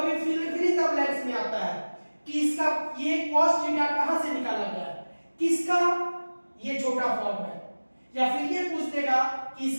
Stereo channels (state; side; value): inverted; both; correlation -1.00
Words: फिल इन द ब्लैंक्स में आता है कि इसका ये कॉस थीटा कहां से निकाला गया है, किसका? ये छोटा फॉर्म है। या फिर ये पूछ देगा कि